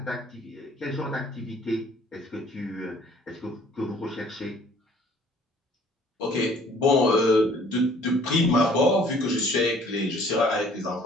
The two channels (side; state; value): both; normal; correlation 0.55